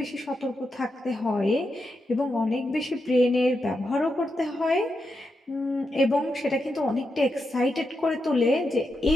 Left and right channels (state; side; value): normal; both; correlation 0.86